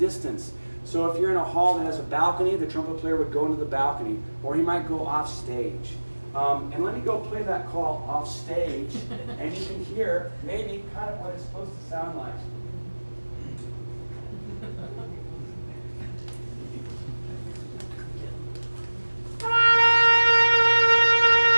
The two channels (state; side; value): inverted; both; correlation -1.00